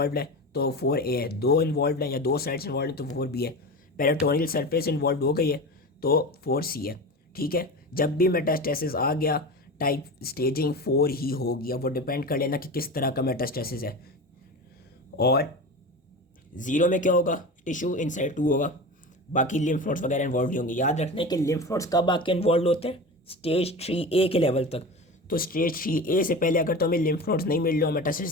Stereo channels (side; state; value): both; normal; correlation 0.29